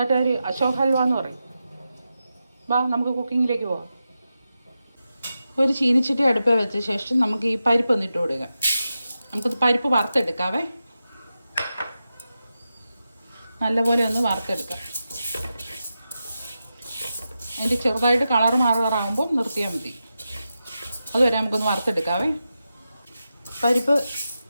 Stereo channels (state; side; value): inverted; both; correlation -0.90